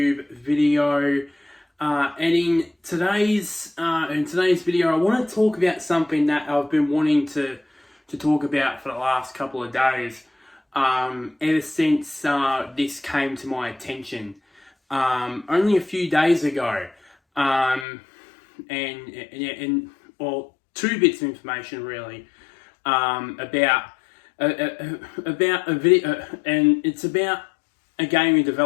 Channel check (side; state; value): right; drops out; at 17.9 s